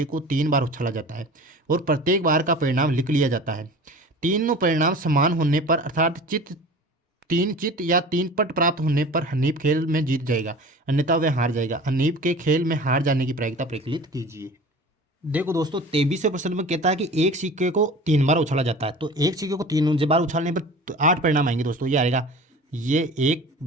को 3 बार उछाला जाता है और प्रत्येक बार का परिणाम लिख लिया जाता है। तीनों परिणाम समान होने पर, अर्थात 3 चित या 3 पट प्राप्त होने पर हनीफ खेल में जीत जाएगा, अन्यथा वह हार जाएगा। हनीफ के खेल में हार जाने की प्रायिकता प्रकलित कीजिए। देखो दोस्तों 23वें प्रश्न में कहता है कि एक सिक्के को 3 बार उछाला जाता है, तो एक सिक्के को 3 बार उछालने पर 8 परिणाम आएंगे दोस्तों। ये आएगा, ये 1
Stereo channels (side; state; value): both; normal; correlation 0.39